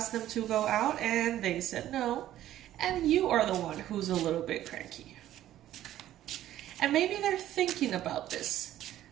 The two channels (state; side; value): quieter; left; 13.0 dB